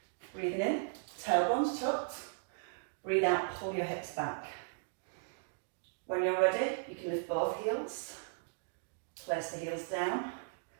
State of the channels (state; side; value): silent; left; digital silence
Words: Breathing in, tailbones tucked. Breathe out, pull your hips back. When you're ready, you can lift both heels, place the heels down,